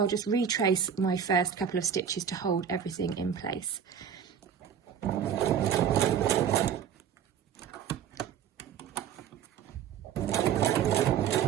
just retrace my first couple of stitches to hold everything in place.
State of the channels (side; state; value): left; quieter; 8.2 dB